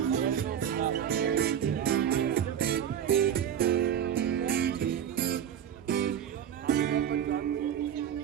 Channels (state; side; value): quieter; left; 9.3 dB